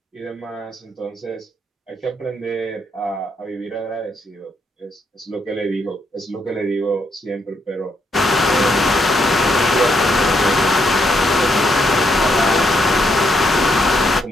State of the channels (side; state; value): both; normal; correlation 0.76